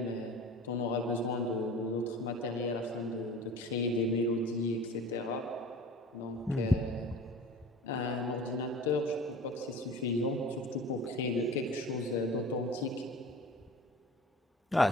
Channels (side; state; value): both; normal; correlation 0.40